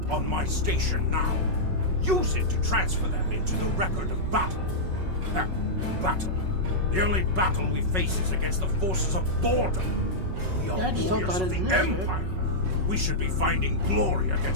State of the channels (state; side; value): late; left; 5.4 ms